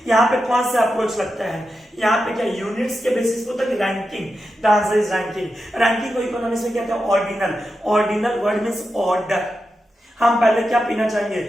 यहाँ पे कौन सा अप्रोच लगता है, यहाँ पे क्या यूनिट्स के बेसिस पे होता है, ranking. The answer is ranking. Ranking को इकोनॉमिक्स में क्या कहते हैं, ordinal. Ordinal word means order. हम पहले क्या पीना चाहेंगे,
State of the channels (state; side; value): normal; both; correlation 0.89